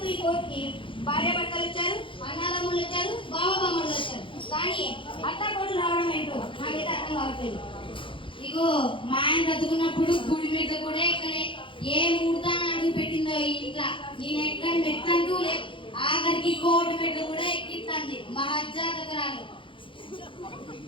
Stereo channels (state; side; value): late; right; 0.25 ms